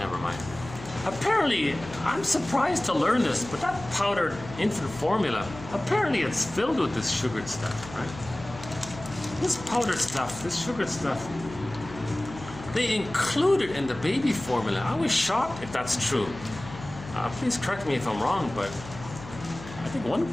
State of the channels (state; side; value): noise; left; hum, 14 dB below the sound